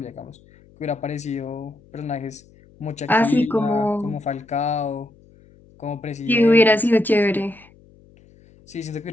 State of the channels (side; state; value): left; noise; hum, 27 dB below the sound